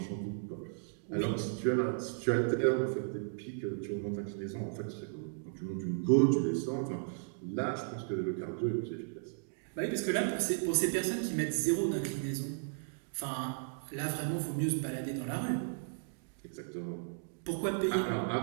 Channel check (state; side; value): silent; left; digital silence